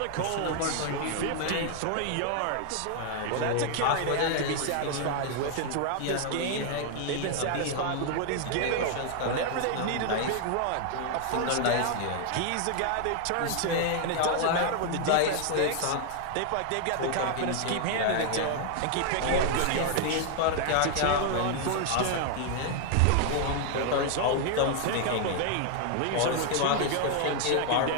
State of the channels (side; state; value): both; different; correlation 0.00